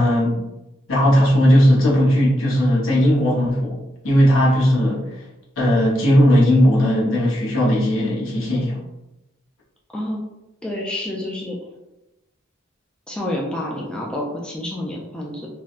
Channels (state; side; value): normal; both; correlation 0.84